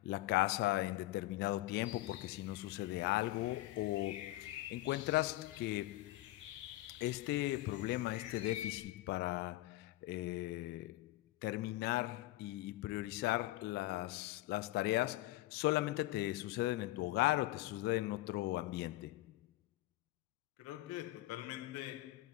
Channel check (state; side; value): quieter; right; 17.5 dB